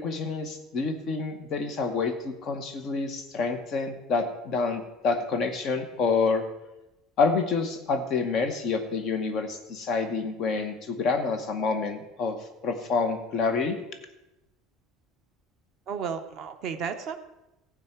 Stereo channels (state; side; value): quieter; right; 3.8 dB